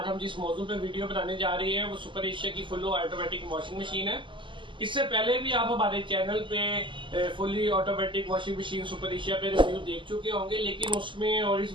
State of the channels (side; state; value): left; late; 0.24 ms